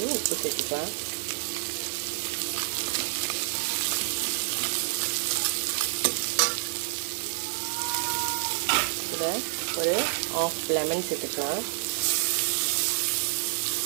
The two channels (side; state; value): left; silent; digital silence